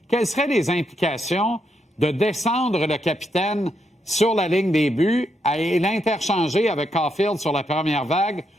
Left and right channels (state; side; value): normal; both; correlation 0.80